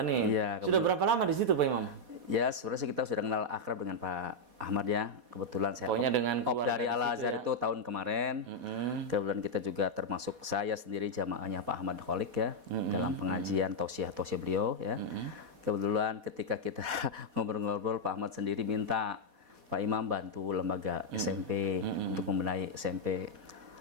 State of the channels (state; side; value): late; left; 4.1 ms